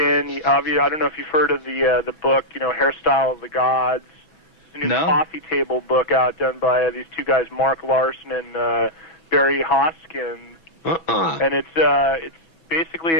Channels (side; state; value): right; late; 6.1 ms